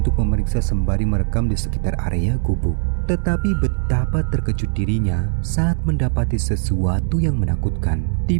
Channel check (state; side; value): silent; left; digital silence